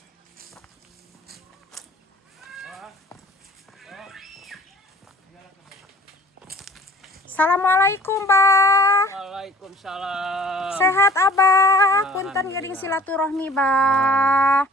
Assalamualaikum, Bah. Waalaikumsalam. Sehat, Abah. Punten gering silaturahmi, Bah.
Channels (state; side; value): normal; both; correlation 0.50